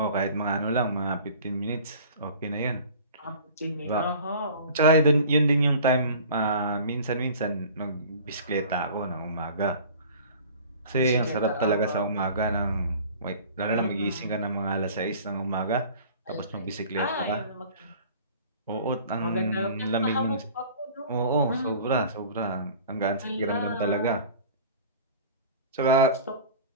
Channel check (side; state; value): both; inverted; correlation -0.44